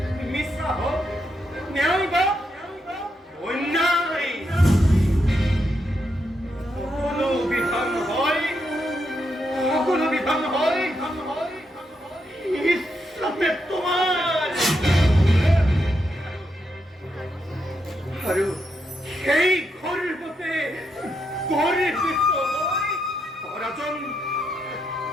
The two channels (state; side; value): normal; both; correlation 0.81